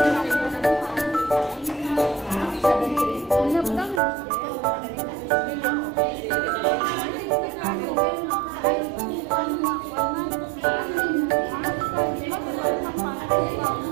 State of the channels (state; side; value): drops out; left; at 4.0 s